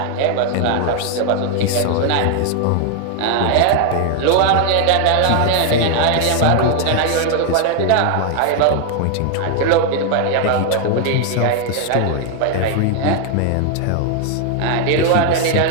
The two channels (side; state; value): both; different; correlation 0.00